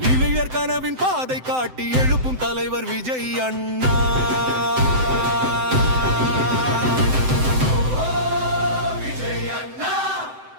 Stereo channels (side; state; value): left; late; 7.8 ms